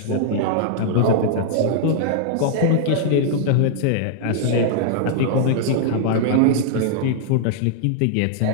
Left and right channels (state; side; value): different; both; correlation -0.01